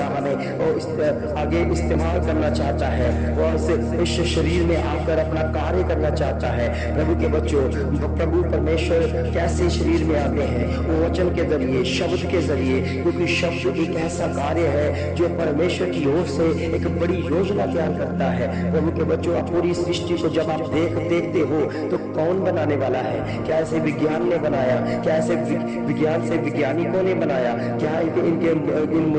हमें आगे इस्तेमाल करना चाहता है। वो इस शरीर में आकर अपना कार्य करना चाहता है। प्रभु के बच्चों प्रभु परमेश्वर कैसे शरीर में आते हैं? वो वचन के जरिए, शब्द के जरिए, क्योंकि शब्द एक ऐसा कार्य है जो परमेश्वर की ओर से एक बड़ी योजना तैयार करता है। प्रभु के बच्चों आप पूरी सृष्टि को जब आप देखते हो तो कौन बनाने वाला है? क्या ऐसे विज्ञान ने बनाया? क्या ऐसे विज्ञान से वैज्ञानिकों ने बनाया? क्या इन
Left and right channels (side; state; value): both; identical; correlation 1.00